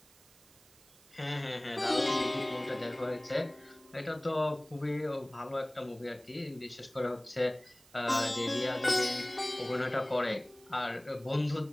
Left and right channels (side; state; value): right; noise; hiss, 25 dB below the sound